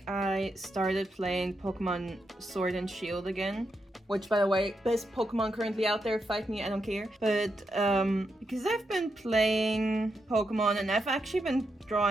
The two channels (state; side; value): normal; both; correlation 0.84